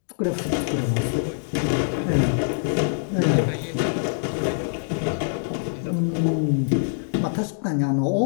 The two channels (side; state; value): right; silent; digital silence